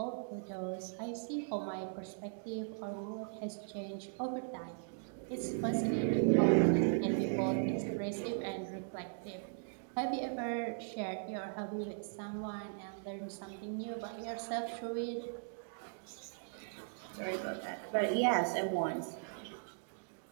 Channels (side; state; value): left; silent; digital silence